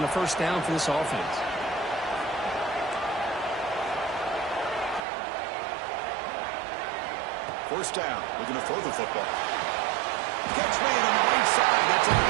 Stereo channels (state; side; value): drops out; left; at 5.0 s